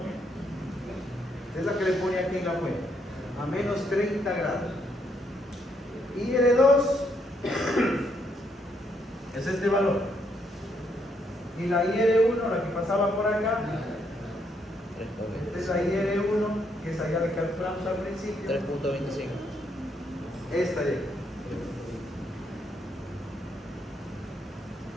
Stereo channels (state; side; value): normal; both; correlation 0.74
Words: Es la que le pone aquí en la fuente. A menos 30 grados. IR2 es este valor. Y la IR1, la que pasaba por acá, esta es la IR1, que es allá la que calculamos al principio. 3,25. Esta de aquí.